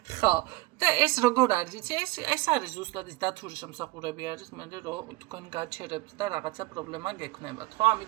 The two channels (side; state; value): left; quieter; 21.5 dB